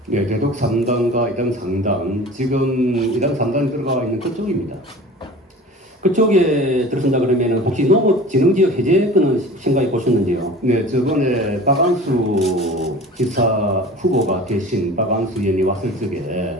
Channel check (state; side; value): normal; both; correlation 0.40